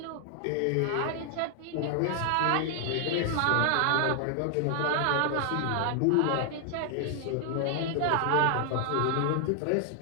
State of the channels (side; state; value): both; different; correlation 0.00